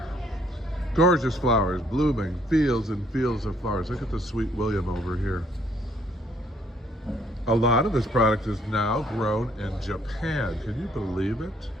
Gorgeous flowers, blooming, fields and fields of flowers. Look at the Sweet William over here. A lot of this product is now grown in Japan. Can you believe it?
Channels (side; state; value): both; normal; correlation 0.66